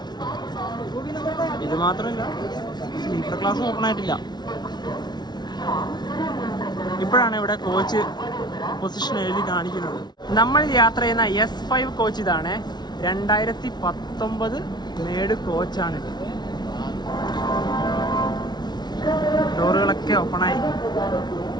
ഇത് മാത്രമല്ല, സ്ലീപ്പർ ക്ലാസ് ഓപ്പൺ ആയിട്ടില്ല. ഇപ്പോഴാണ് ഇവിടെ കോച്ച് പൊസിഷൻ എഴുതി കാണിക്കുന്നത്. നമ്മൾ യാത്ര ചെയ്യുന്ന S5 കോച്ച് ഇതാണ്. 2019 മേഡ് കോച്ചാണിത്. ഡോറുകളൊക്കെ ഓപ്പണായി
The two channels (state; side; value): late; right; 0.20 ms